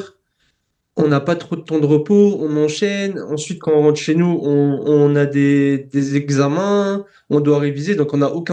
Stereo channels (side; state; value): both; identical; correlation 1.00